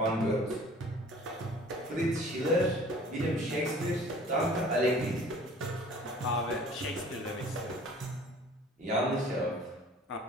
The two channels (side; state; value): both; normal; correlation 0.49